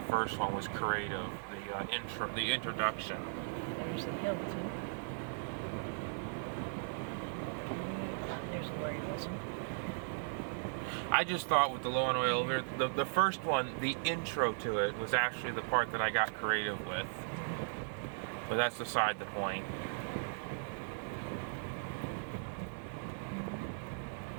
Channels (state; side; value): silent; left; digital silence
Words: first one was creative. The introduction. There's the Hilton. There's Lori Wilson. I just thought with the low on oil, the first one, the intro to it was actually the part that I got creative with. But that's beside the point.